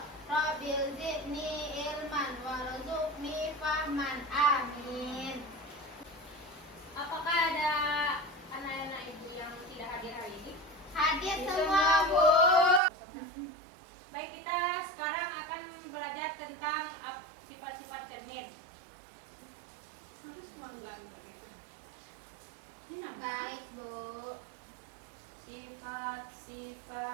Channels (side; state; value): left; drops out; at 12.8 s